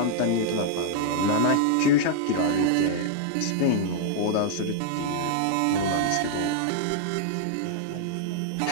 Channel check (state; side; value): different; both; correlation -0.01